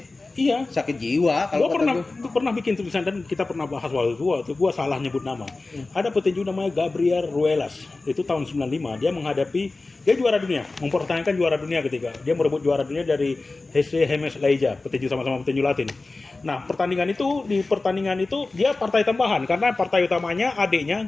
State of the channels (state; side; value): quieter; right; 3.4 dB